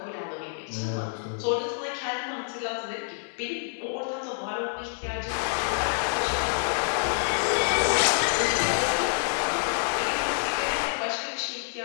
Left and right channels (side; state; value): right; silent; digital silence